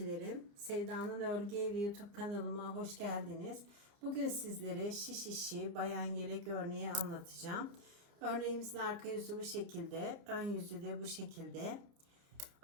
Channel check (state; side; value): late; left; 29 ms